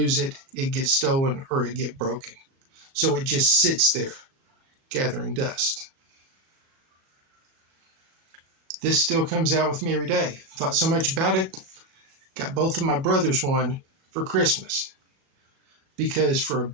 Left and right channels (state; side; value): late; left; 37 ms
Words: it, it gets stolen, or it get broken. So it just sits there, gathering dust. This still comes out with me every day. Thought so much about it. Got both of my brothers one for Christmas. Because for a